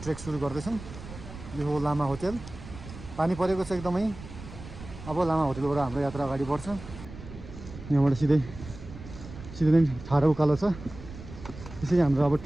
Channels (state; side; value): noise; right; rumble, 14 dB below the sound